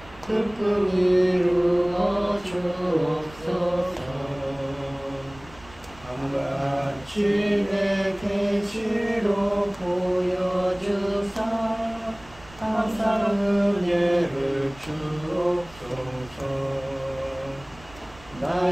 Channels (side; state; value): right; noise; rumble, 22 dB below the sound